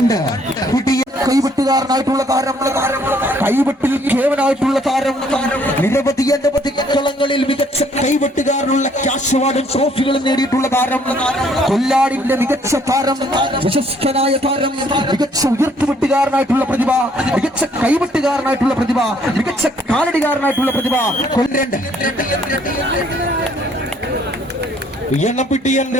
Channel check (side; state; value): both; normal; correlation 0.64